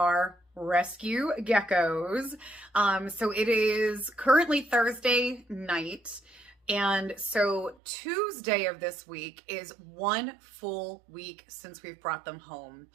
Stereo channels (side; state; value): left; drops out; at 7.8 s